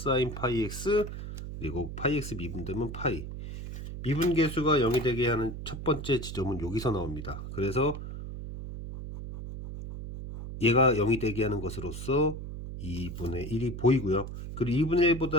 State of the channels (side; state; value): right; noise; hum, 8 dB below the sound